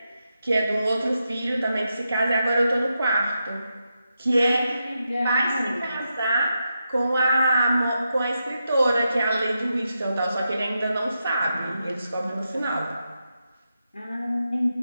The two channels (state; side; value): inverted; both; correlation -0.86